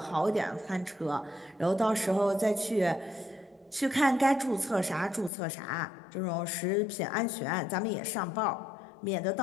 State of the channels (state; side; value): drops out; right; at 5.3 s